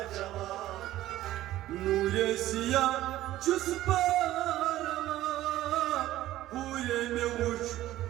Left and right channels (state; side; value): quieter; left; 14.7 dB